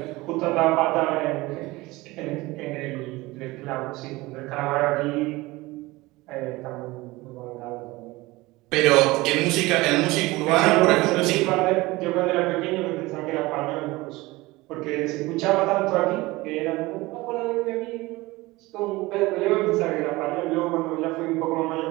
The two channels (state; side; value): quieter; left; 20.8 dB